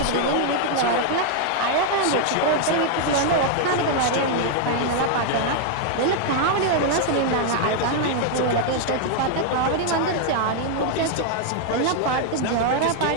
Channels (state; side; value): different; both; correlation 0.00